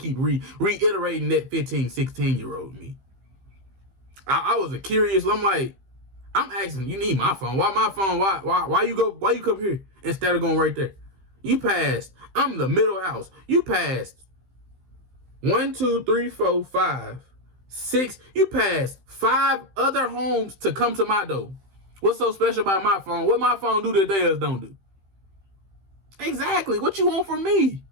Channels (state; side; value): late; left; 15 ms